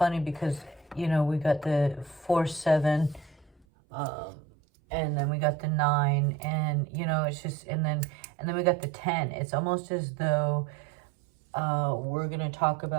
because, you know, we got the 4, 7, and then we got the 9, and, you know, it's just, and then we got the 10. It's almost as though we're going to talk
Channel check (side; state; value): left; drops out; at 3.7 s